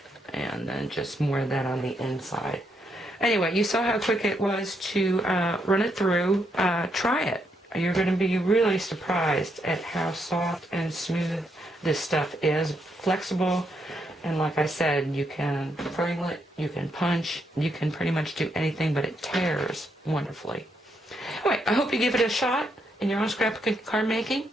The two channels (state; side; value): normal; both; correlation 0.78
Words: And then just more of that on the inside. Anyway, you saw how quick it was to run it through. Try it. You're going to be really surprised at how soft and smooth this stuff is. Flexible. And like I said, you can frame it, you can punch, you can pretty much do anything, but it tears wonderfully. Anyway, I hope you give it a shot in your own scrapbook card making.